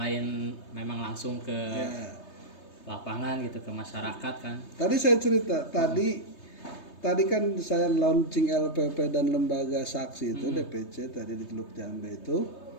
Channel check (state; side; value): late; right; 3.3 ms